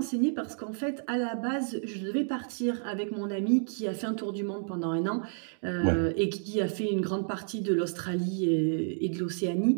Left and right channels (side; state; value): left; silent; digital silence